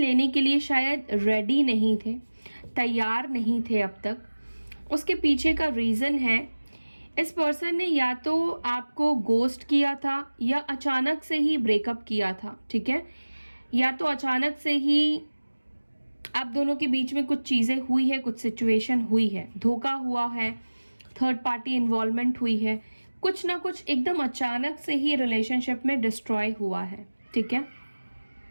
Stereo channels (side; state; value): both; inverted; correlation -1.00